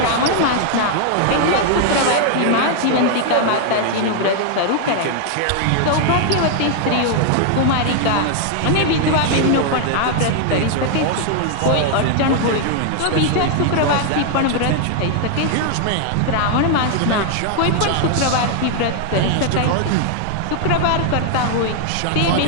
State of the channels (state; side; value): different; both; correlation 0.00